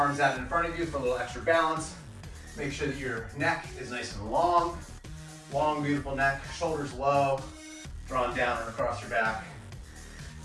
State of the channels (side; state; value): both; identical; correlation 1.00